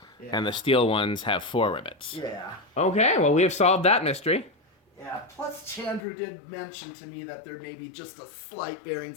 Yeah. And the steel ones have 4 rivets. Yeah. Okay, well, we have solved that mystery. Yeah, plus Chandru did mention to me that there may be just a slight bearing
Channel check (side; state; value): right; drops out; at 6.0 s